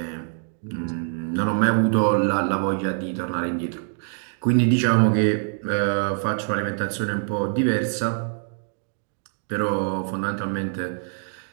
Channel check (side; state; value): left; silent; 56 dB below the other